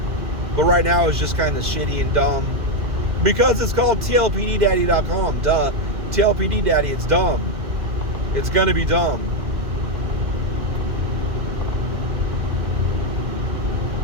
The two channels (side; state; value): left; late; 2.1 ms